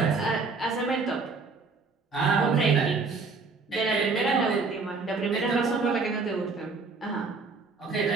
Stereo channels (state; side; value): quieter; left; 4.3 dB